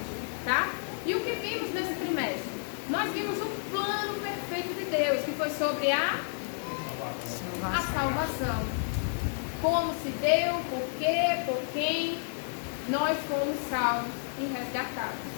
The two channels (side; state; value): right; silent; digital silence